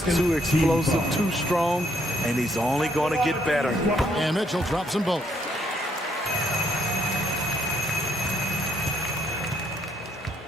too explosive, too strong, and he's only going to get better. And Mitchell drops them both.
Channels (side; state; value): both; normal; correlation 0.70